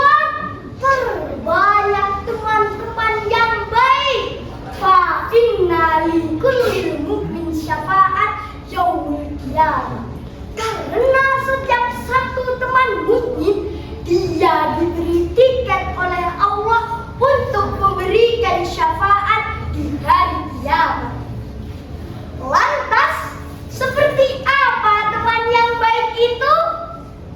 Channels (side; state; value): both; identical; correlation 1.00